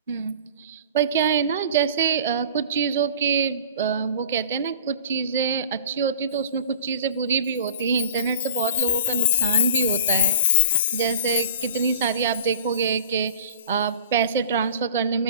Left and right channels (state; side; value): inverted; both; correlation -0.44